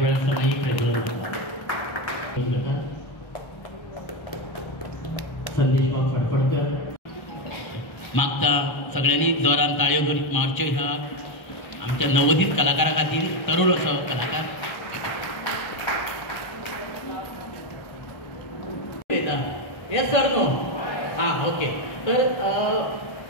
समाई प्रज्वलन जाता संदेश बाब फडफडकर मागता सगळ्यांनी जोरान ताळयो मारच्यो ह्या आमच्या नवोदित कलाकारा खातीर तरुण असो कलाकार येस सर नो हां ओके. तर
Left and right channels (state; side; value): late; right; 1.3 ms